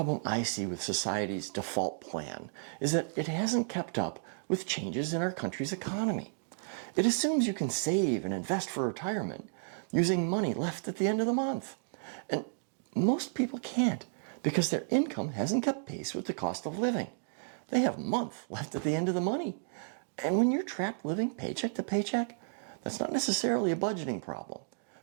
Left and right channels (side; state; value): left; silent; digital silence